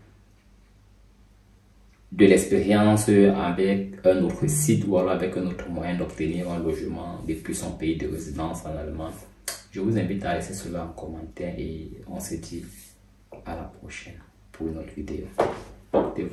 de l'expérience avec un autre site ou alors avec un autre moyen d'obtenir un logement depuis son pays de résidence en Allemagne, je vous invite à laisser cela en commentaire et on se dit à la prochaine pour une autre vidéo.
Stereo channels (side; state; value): both; identical; correlation 1.00